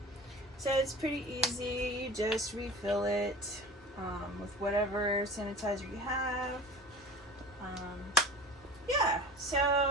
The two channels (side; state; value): both; normal; correlation 0.37